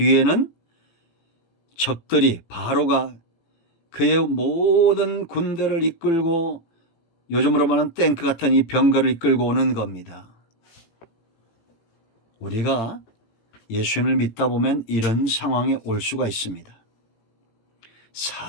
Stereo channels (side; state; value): right; late; 18 ms